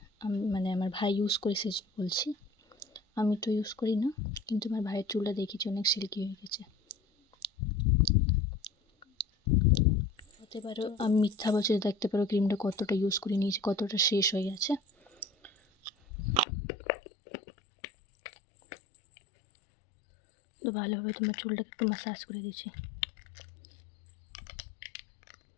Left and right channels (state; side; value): drops out; right; at 16.4 s